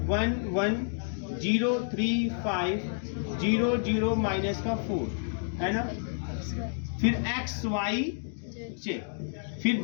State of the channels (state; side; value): silent; right; digital silence